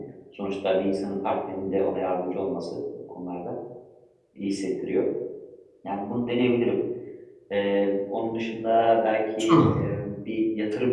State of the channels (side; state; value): both; identical; correlation 1.00